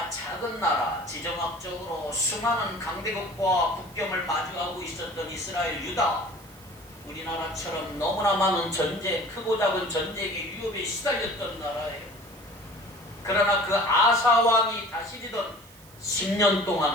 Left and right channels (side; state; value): right; noise; hiss, 23 dB below the sound